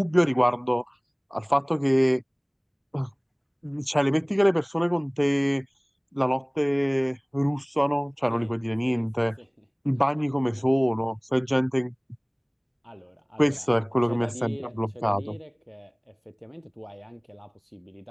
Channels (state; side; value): identical; both; correlation 1.00